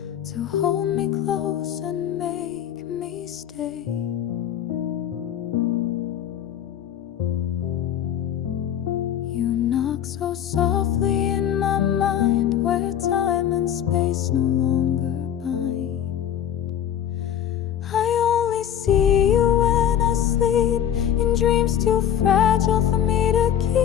to hold me close and make me stay. You knock so softly in my mind, where time and space no longer bind. dreams too fragile for me to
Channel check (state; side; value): quieter; right; 9.9 dB